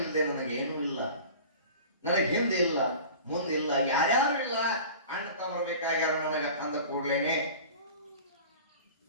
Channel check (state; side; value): inverted; both; correlation -0.39